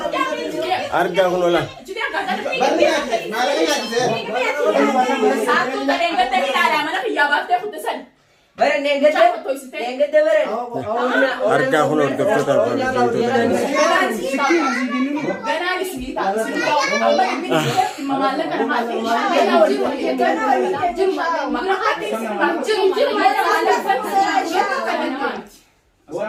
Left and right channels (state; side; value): identical; both; correlation 1.00